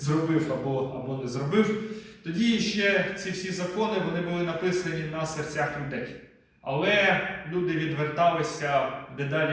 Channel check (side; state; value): both; identical; correlation 1.00